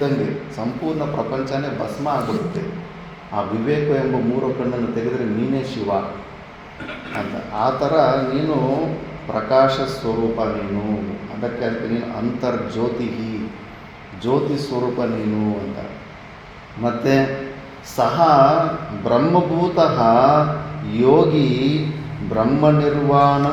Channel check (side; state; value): both; identical; correlation 1.00